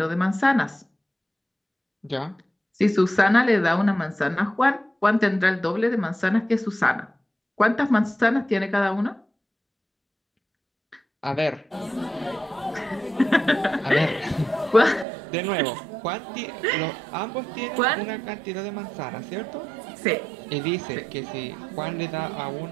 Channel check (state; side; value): drops out; left; at 15.1 s